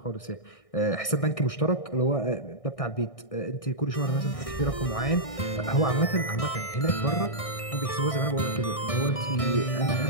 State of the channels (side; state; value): right; late; 1.6 ms